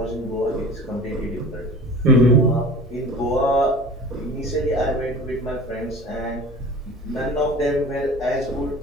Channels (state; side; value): normal; both; correlation 0.39